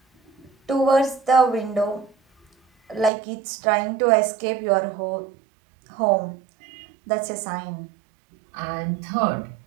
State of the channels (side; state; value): left; drops out; at 3.1 s